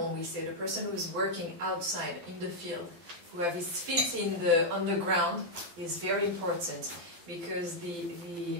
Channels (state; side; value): late; left; 12 ms